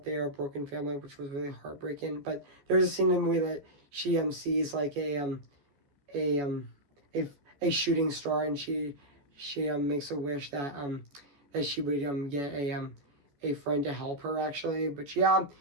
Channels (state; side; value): late; left; 14 ms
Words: they are a broken family, which was really heartbreaking. But there's a scene in the movie that she sees like a a a shooting star, and she makes a wish that she would get a friend to help her, actually. But yeah,